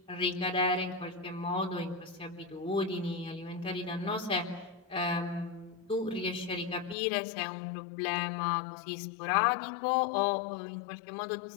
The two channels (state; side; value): drops out; right; at 7.0 s